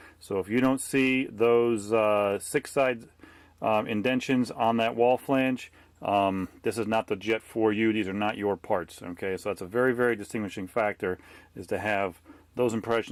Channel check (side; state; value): both; identical; correlation 1.00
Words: so if you don't see those 6-side indentions on that wall flange, this is not the jet for you. These are not your parts. Okay, so that's a very, very distinguishing factor, is to have those